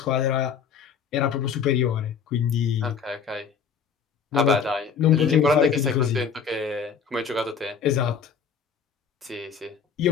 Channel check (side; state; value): right; quieter; 6.4 dB